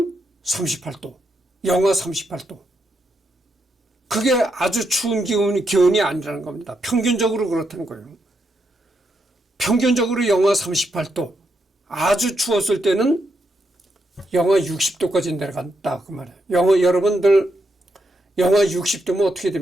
38도, 영하 38도. 그게 아주 추운 기온이 아니라는 겁니다. 평균적으로 그렇다는 거예요. 평균적으로 영하 38도, 아주 추웠을 때는 영하 60도까지 내려간다 그 말이에요. 여러분들 영하 60도면 어떻게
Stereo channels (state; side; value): normal; both; correlation 0.81